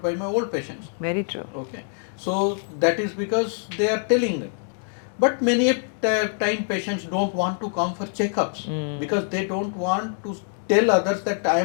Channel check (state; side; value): silent; right; 59 dB below the other